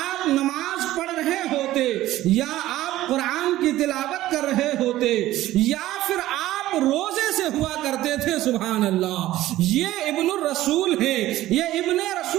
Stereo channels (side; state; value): left; quieter; 15.2 dB